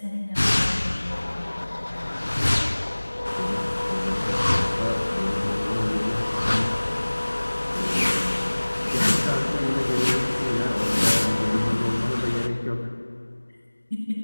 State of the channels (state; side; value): inverted; both; correlation -1.00